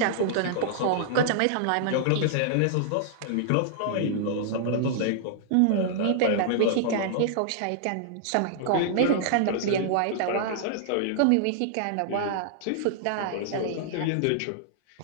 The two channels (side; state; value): both; different; correlation -0.01